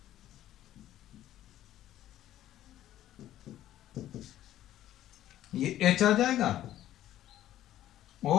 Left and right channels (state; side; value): quieter; right; 12.9 dB